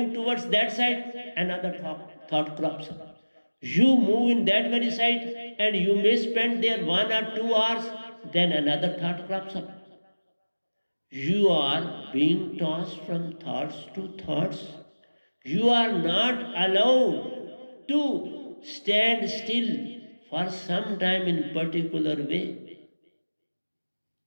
towards that side, another thought crops up. You move in that very side and you may spend there 1 or 2 hours, then another thought crops up. You are being tossed from thoughts to thoughts. You are not allowed to stand still for some time in particular way.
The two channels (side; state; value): both; inverted; correlation -1.00